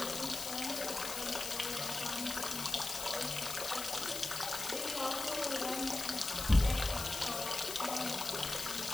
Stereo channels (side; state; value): left; noise; hiss, 5 dB below the sound